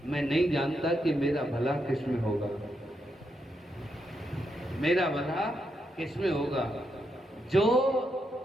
मैं नहीं जानता कि मेरा भला किसमें होगा, मेरा भला किसमें होगा। जो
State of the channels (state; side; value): normal; both; correlation 0.82